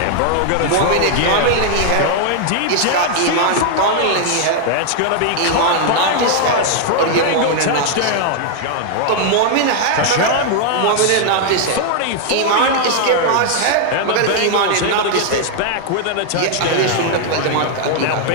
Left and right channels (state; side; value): different; both; correlation 0.00